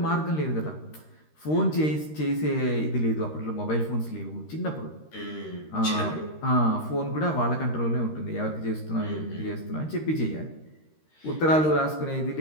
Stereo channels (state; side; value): late; right; 13 ms